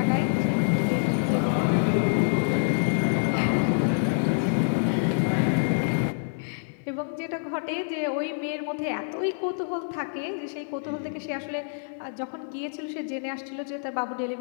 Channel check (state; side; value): silent; right; digital silence